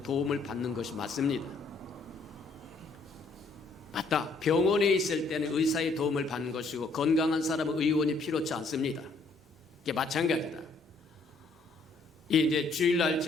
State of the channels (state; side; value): quieter; right; 3.5 dB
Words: 도움을 받는 것이 맞습니다. 맞다. 병원에 있을 때는 의사의 도움을 받는 것이고 건강한 사람은 의원이 필요치 않습니다. 이게 마찬가지다. 이제 주일날